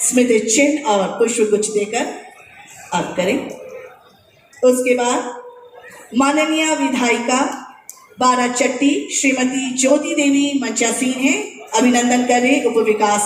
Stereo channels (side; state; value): both; identical; correlation 1.00